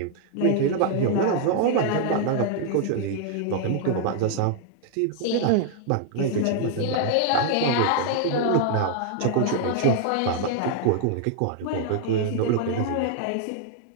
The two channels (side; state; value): both; different; correlation 0.00